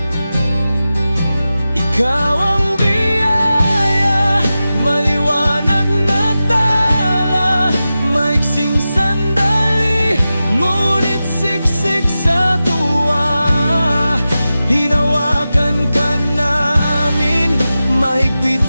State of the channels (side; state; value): both; inverted; correlation -0.93